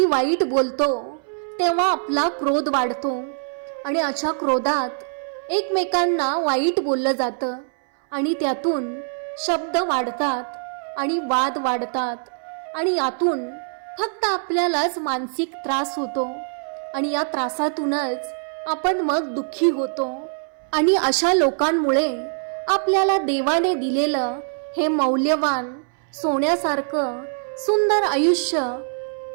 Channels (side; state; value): left; silent; 61 dB below the other